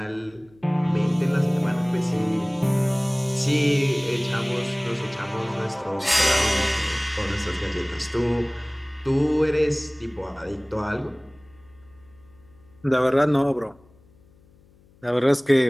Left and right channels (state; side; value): noise; left; hum, 29 dB below the sound